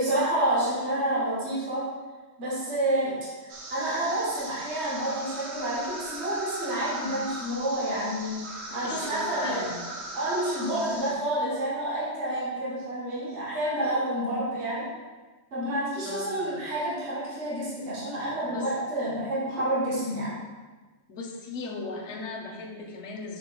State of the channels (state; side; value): late; left; 3.2 ms